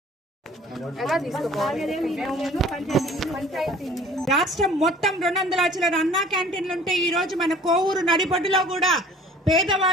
రాష్ట్రం మొత్తం 200 లక్షల అన్నా క్యాంటీన్లు ఉంటే ఈ రోజు మన కోవూరు నడిబొడ్డులో కూడా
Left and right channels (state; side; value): normal; both; correlation 0.50